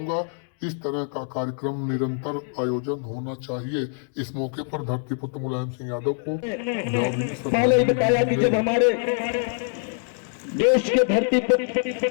इस तरह का कार्यक्रम निरंतर आयोजन होना चाहिए। इस मौके पर धरतीपुत्र मुलायम सिंह यादव को पहले ही बताया कि जब हमारे देश के धरतीपुत्र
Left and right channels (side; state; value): right; silent; 57 dB below the other